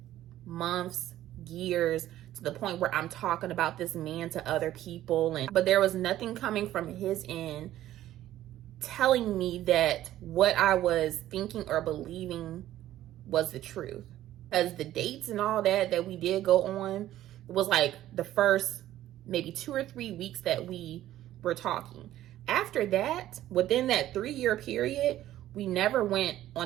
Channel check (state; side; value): quieter; left; 13.4 dB